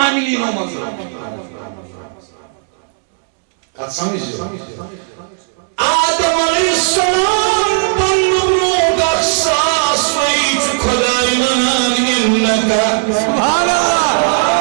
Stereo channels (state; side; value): silent; left; digital silence